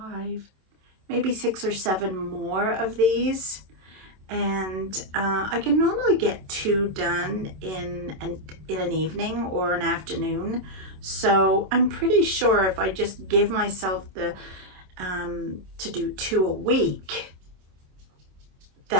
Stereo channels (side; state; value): left; late; 27 ms